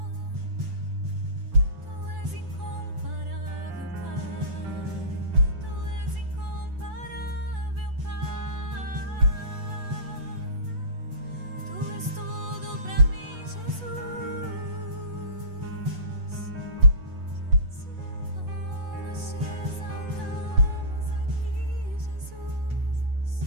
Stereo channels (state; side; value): late; left; 8.1 ms